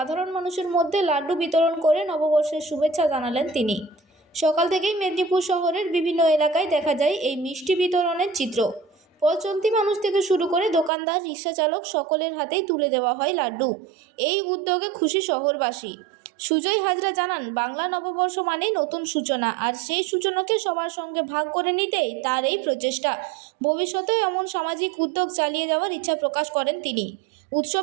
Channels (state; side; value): drops out; left; at 10.9 s